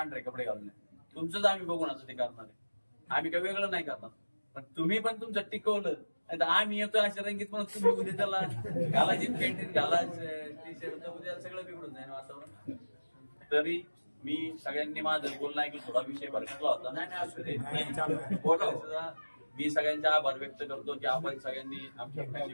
कपडे घालून. तुमचंच आम्ही बघून आता ते करणार आहे. आम्ही काही वेगळं नाही करणार. पण तुम्ही पण तुमचं टिकवलं. नाही तर आम्ही येतो अशा रंगीत पण तुम्ही उद्या त्याला घालायची पॅन्ट घाला टी शर्ट, उद्या सगळं बिघडून जाईल वातावरण. तरी मी सगळ्यांनी माझं बोलणं ऐकलं, थोडा विषय भरकटला होता. सुद्धा मी सगळ्यांचे आभार व्यक्त करतो की आपण सगळ्यांनी आमची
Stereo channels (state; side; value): inverted; both; correlation -1.00